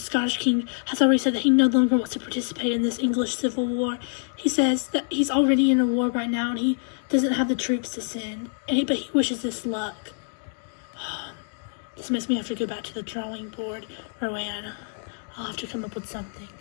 king, has already said that he no longer wants to participate in this English civil war. He says that he's already in a war right now and he doesn't have the troops to send. But he wishes us luck. This makes me have to go back to the drawing board, Rowan. I'll have to come up with something.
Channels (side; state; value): right; silent; digital silence